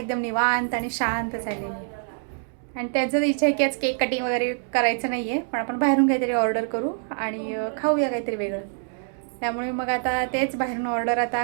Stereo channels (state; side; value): silent; left; digital silence